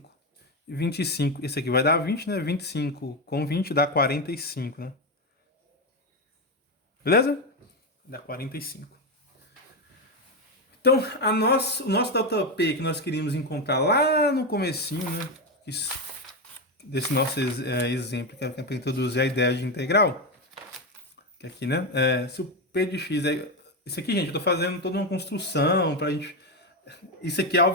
25, esse aqui vai dar 20, né? 25 com 20 dá 45, né? Beleza? Dá 45. Então, o nosso ΔP que nós queríamos encontrar lá no comecinho, né? Desse nosso exemplo, que é para introduzir a ideia de integral. Que aqui, né? Se o P de x é... Isso aqui, gente, eu estou fazendo toda uma construção para a gente... Isso aqui,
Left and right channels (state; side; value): normal; both; correlation 0.11